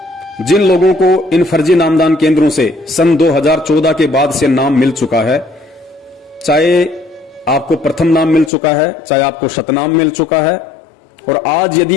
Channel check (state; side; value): drops out; right; at 8.5 s